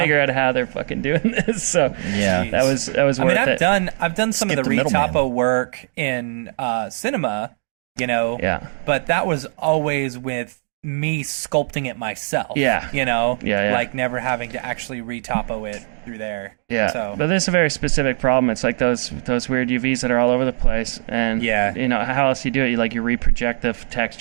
out how they're fucking doing this. So that was worth it. I've done some of the retopo work in cinema, but that was always with me sculpting it myself. Like never having to actually retopo it through there. But this is a very specific problem. It's like those weird UVs that are all over the place, and how else you do it? You reproject the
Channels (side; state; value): left; silent; digital silence